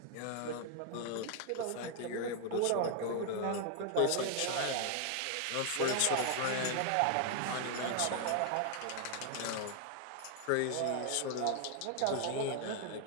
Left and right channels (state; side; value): different; both; correlation 0.00